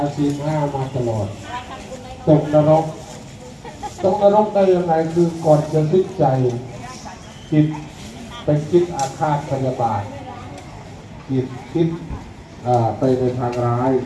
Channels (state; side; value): identical; both; correlation 1.00